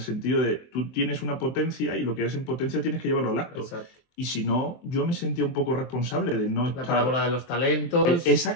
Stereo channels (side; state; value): right; late; 23 ms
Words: de tú tienes una potencia y lo que eres en potencia tienes que llevarlo al acto. Exacto. Y si no, yo me sentía un poco responsable de no estar... La parábola de los talentos.